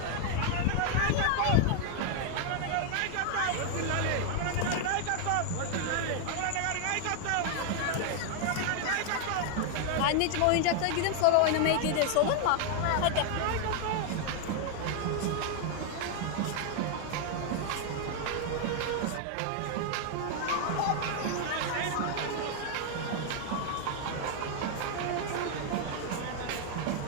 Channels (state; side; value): different; both; correlation 0.00